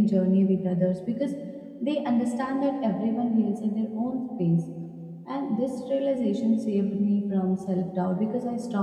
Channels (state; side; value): identical; both; correlation 1.00